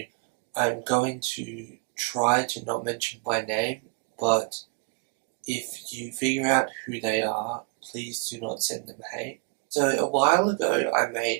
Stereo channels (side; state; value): left; quieter; 32.2 dB